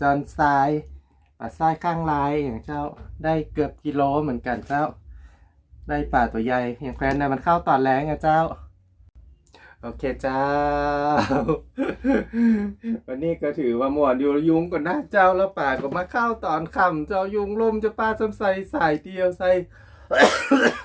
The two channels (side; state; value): both; identical; correlation 1.00